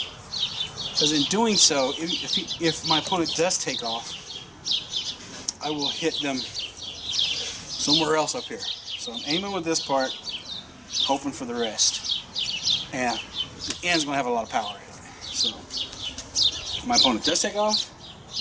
because in doing so, if my opponent does take off, I will hit them somewhere else up here. So I'm aiming with this part, hoping for the rest. And the end's going to have a lot of power in it. So if my opponent does take off,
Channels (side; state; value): both; identical; correlation 1.00